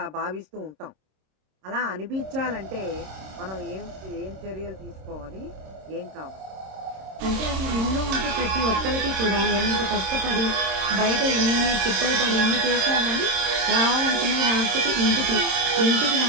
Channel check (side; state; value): left; late; 26 ms